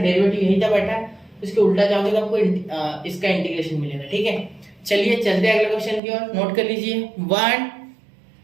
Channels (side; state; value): left; drops out; at 6.0 s